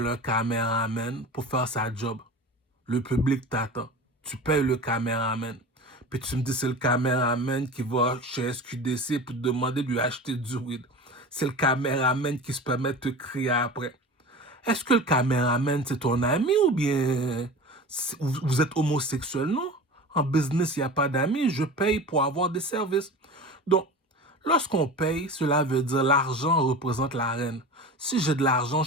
un caméraman pour faire sa job. Le public t'attend. Tu payes le caméraman. Puis tu me dis que c'est le caméraman qui va chez SQDC pour te demander de lui acheter du weed. C'est le caméraman qui se permet de te crier après. Est-ce que le caméraman, c'est ton ami ou bien vous êtes homosexuel? Non. En business, il n'y a pas d'amis. Je paye pour avoir des services. Donc, lorsqu'on paye, cela veut dire l'argent représente la reine. Si j'ai de l'argent,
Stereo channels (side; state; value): both; normal; correlation 0.34